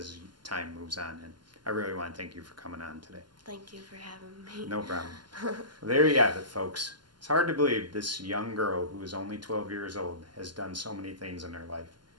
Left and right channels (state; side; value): late; left; 0.71 ms